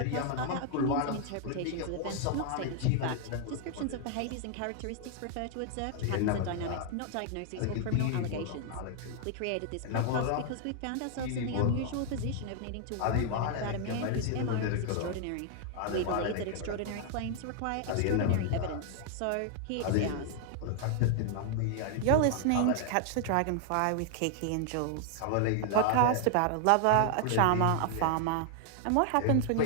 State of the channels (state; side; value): different; both; correlation 0.00